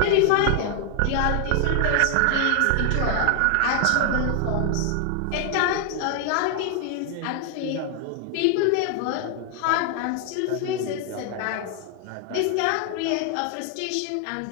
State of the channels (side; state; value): both; different; correlation 0.00